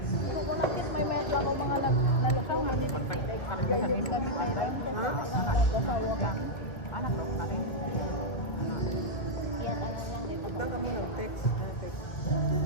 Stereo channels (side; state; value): right; late; 2.0 ms